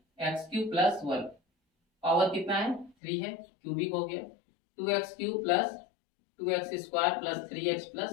x³ + 1, पावर कितना है 3 है, क्यूबिक हो गया। 2x³ + 2x² + 3x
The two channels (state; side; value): drops out; right; at 3.0 s